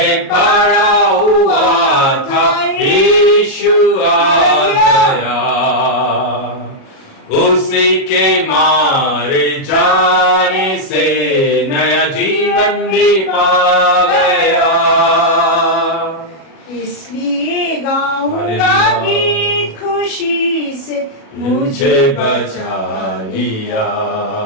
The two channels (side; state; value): right; late; 37 ms